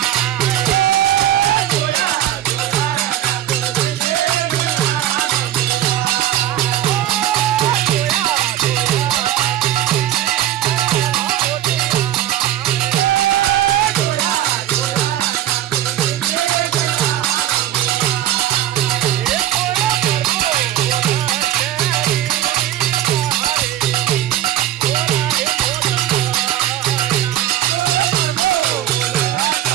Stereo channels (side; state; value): left; quieter; 12.3 dB